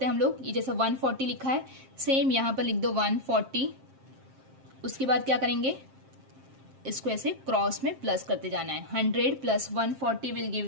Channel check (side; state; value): left; late; 7.5 ms